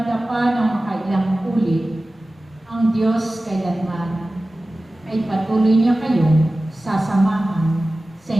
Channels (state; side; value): normal; both; correlation 0.96